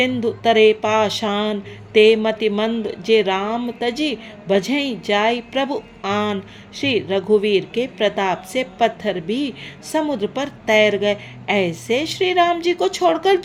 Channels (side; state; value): both; identical; correlation 1.00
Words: तरे पाषाण। ते मति मंद जे राम तजी, बझई जाय प्रभु आन। श्री रघुवीर के प्रताप से पत्थर भी समुद्र पर तैर गए। ऐसे श्री राम जी को छोड़कर